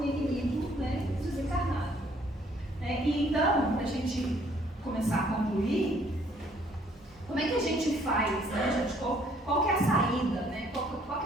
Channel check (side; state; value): both; normal; correlation 0.63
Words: inimigo, né, desencarnado. E então, para a gente começar a concluir, como é que a gente faz, né, gente? Qual que é a saída, né? Qual